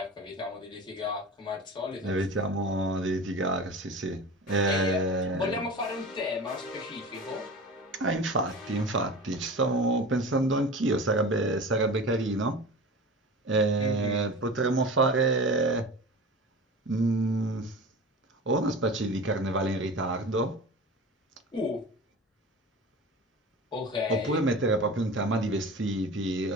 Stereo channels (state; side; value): normal; both; correlation 0.34